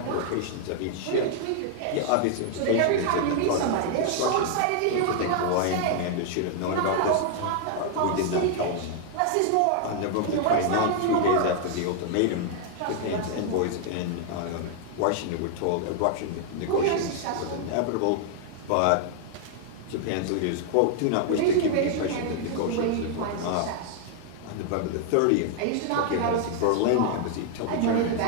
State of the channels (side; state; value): both; different; correlation 0.00